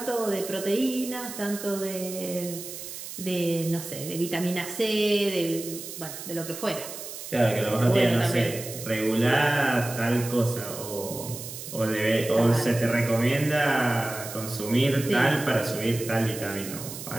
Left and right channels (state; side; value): noise; right; hiss, 10 dB below the sound